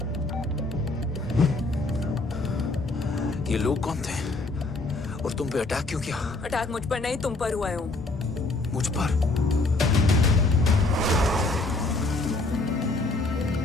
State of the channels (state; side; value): quieter; right; 3.2 dB